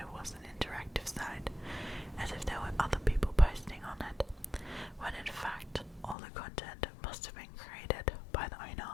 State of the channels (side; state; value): right; drops out; at 6.2 s